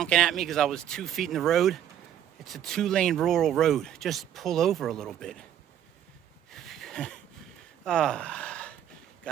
at me because I was 2 feet in the road, it's a 2-lane rural road. Just pull over a little bit.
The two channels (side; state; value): left; quieter; 10.3 dB